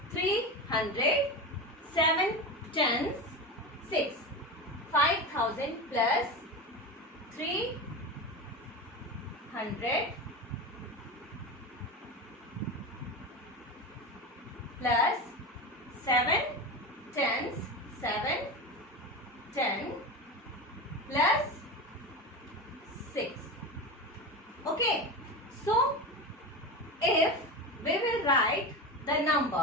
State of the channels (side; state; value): both; normal; correlation 0.24